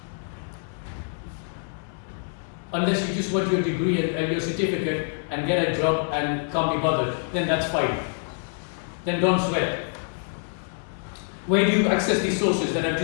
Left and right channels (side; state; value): right; silent; 61 dB below the other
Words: Unless you just want your degree and your certificate and get a job and can't be bothered, then that's fine. Then don't sweat. Where do you access these sources that I've